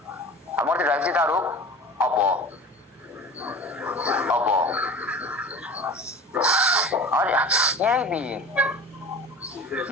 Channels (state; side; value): normal; both; correlation 0.37